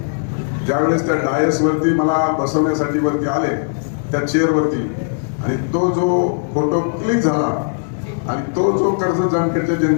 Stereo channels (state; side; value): silent; right; digital silence